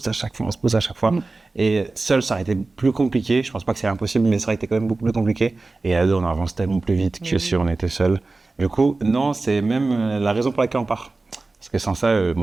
à chaque fois, on se pousse à chaque fois. Mm. Et seul, ça aurait été plus compliqué. Je pense pas que c'est impossible, mais ça aurait été quand même beaucoup plus compliqué. Et à deux, on avance tellement plus vite que si on était seul. Du coup, non, c'est même la raison pour laquelle on part. Parce que sans ça,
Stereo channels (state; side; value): quieter; left; 3.5 dB